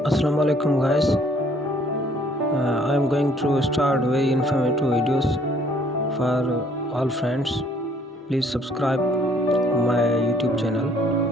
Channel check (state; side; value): normal; both; correlation 0.61